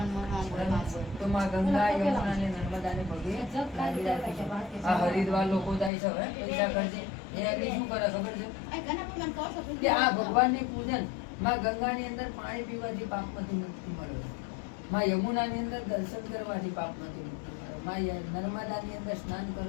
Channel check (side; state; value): right; drops out; at 5.9 s